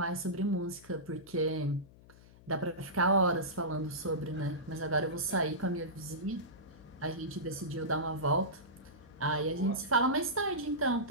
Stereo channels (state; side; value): noise; left; hum, 22 dB below the sound